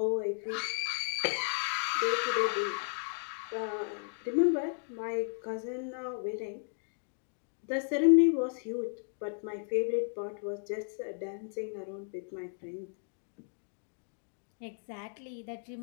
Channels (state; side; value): silent; right; digital silence